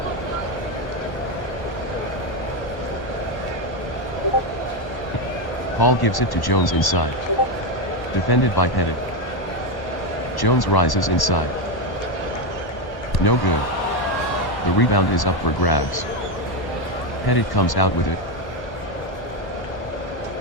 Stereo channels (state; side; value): late; right; 1.1 ms